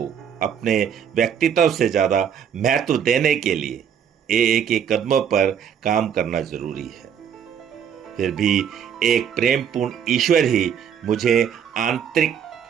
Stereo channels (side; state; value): left; quieter; 8.2 dB